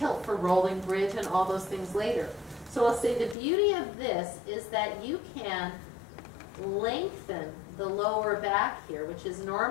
for rolling bridge and all those things later. So I'll say the beauty of this is that you can lengthen the lower back here, which is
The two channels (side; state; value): right; drops out; at 3.4 s